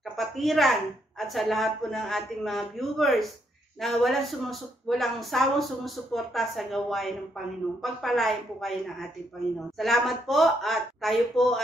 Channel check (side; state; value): both; normal; correlation 0.75